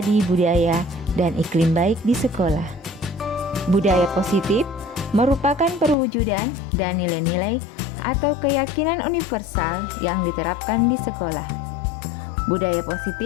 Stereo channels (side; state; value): right; drops out; at 6.0 s